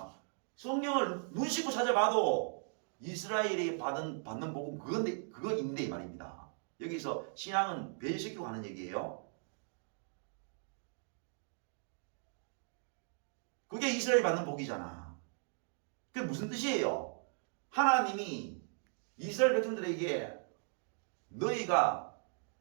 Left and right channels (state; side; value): silent; left; 53 dB below the other